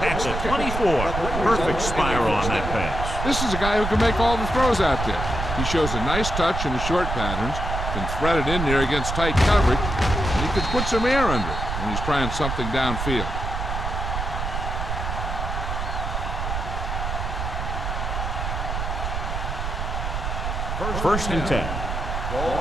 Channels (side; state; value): right; noise; rumble, 3 dB below the sound